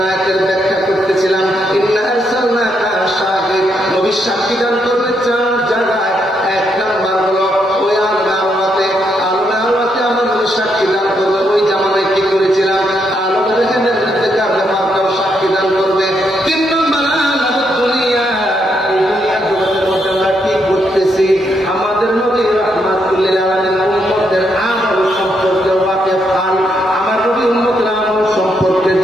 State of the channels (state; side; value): normal; both; correlation 0.78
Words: আয়াতের ব্যাখ্যা করতেছিলাম। ইন্না আরসালনাকা শাহিদ, নবী সাক্ষী দান করবে 4 জায়গায়। 1 নাম্বার হলো ওই আল্লাহতে আমার নবী সাক্ষী দান করবে। ওই জামানায় কি করেছিলাম, আল্লাহ দেখেন ব্যাপারটাও সাক্ষী দান করবে। 3 নম্বর আল্লাহ দুনিয়া, এই দুনিয়ার জগতের মধ্যে আমরা কি করতেছি, আমাদের নবী রাহমাতুল লিল আলামিন উম্মতের আমল সম্পর্কে ওয়াকিফ খান, আমার নবী উম্মতের আমল সম্পর্কে